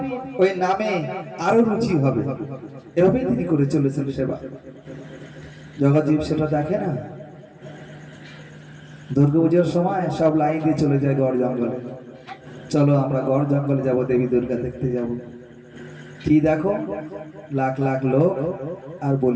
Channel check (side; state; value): both; identical; correlation 1.00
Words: ওই নামে আরো রুচি হবে, এভাবে তিনি করে চলেছেন সেবা। জগৎজীব সেটা দেখে না। দুর্গাপূজার সময় সব লাইন দিয়ে চলে যায় গড় জঙ্গলে। চলো আমরা গড় জঙ্গলে যাব, দেবী দুর্গা দেখতে যাব। কি দেখো, লাখ লাখ লোক আর